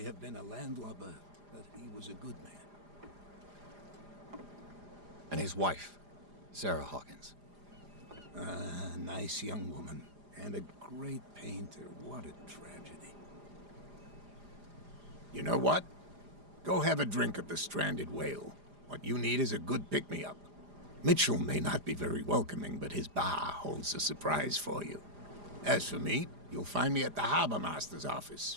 have been a landlubber, but he was a good man. And his wife, Sarah Hawkins. A nice young woman, and a great painter. What a tragedy. You know what? Go have a drink at the Stranded Whale. What you need is a good pick-me-up. Mitchell may not be very welcoming, but his bar holds a surprise for you. As for me, you'll find me at the Harbor Master's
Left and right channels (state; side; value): late; left; 4.9 ms